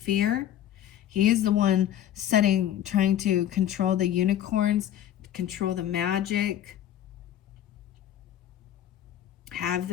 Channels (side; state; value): right; quieter; 11.3 dB